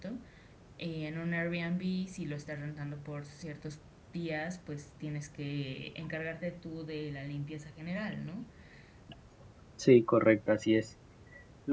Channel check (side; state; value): both; identical; correlation 1.00